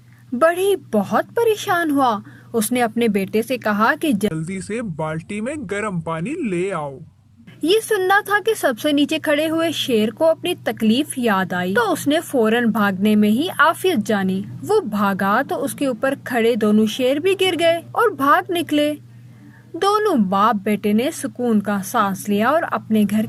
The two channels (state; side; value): identical; both; correlation 1.00